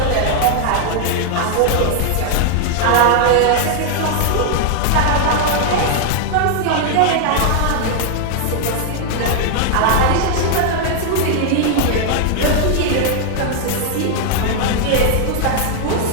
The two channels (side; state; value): both; different; correlation 0.00